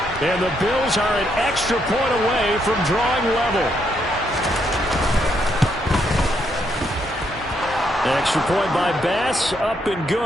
And the Bills are an extra point away from drawing level. Extra point by Bass, up and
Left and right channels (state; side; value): normal; both; correlation 0.76